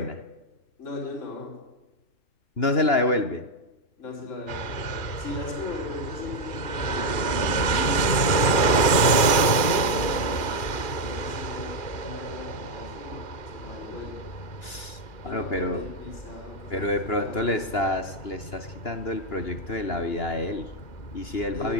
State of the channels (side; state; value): right; late; 2.4 ms